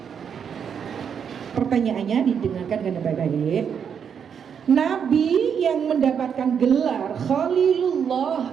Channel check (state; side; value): quieter; left; 7.4 dB